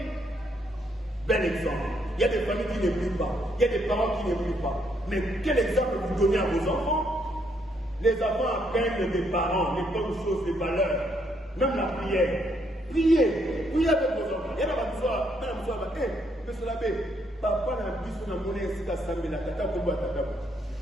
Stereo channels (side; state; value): both; normal; correlation 0.73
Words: Bel exemple. Il y a des familles qui ne prient pas, il y a des parents qui ne prient pas. Mais quel exemple vous donnez à vos enfants? Les enfants apprennent des parents, les bonnes choses, les valeurs, même la prière. Priez avec vos enfants. Il y a monsieur l'abbé, papa n'a plus son amour ici à Sambela, tata Kobo Tata.